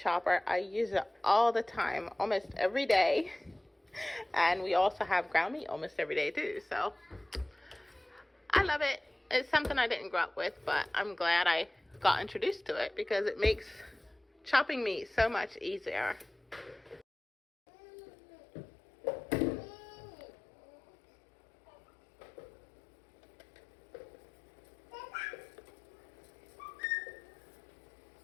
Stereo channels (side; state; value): right; drops out; at 17.1 s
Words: I use it all the time, almost every day. And we also have ground meat almost every day too, so I love it. It's something I didn't grow up with, but I'm glad I got introduced to it because it makes chopping meat so much easier.